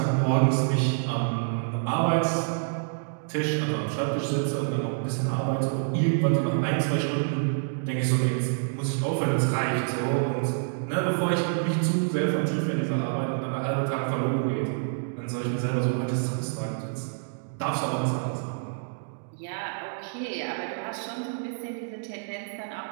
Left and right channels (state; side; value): silent; left; digital silence